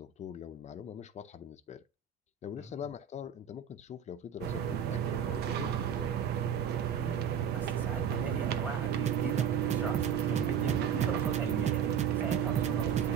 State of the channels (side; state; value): left; quieter; 7.7 dB